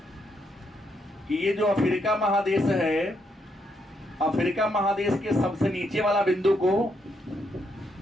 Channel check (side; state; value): both; normal; correlation 0.77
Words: कि ये जो अफ्रीका महादेश है, अफ्रीका महादेश के सबसे नीचे वाला बिंदु को